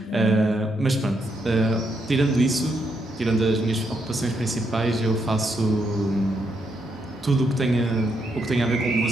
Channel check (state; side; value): normal; both; correlation 0.78